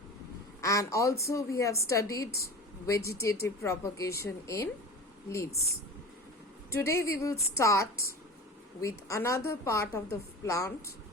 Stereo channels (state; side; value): normal; both; correlation 0.34